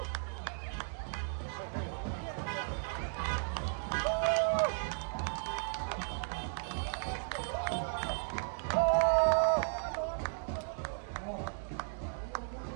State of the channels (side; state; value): left; silent; digital silence